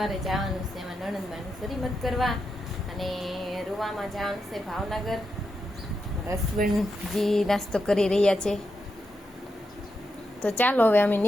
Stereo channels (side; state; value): both; normal; correlation 0.86